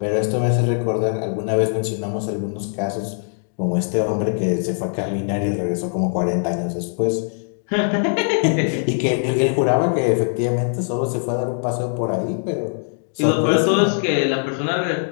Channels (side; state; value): right; silent; digital silence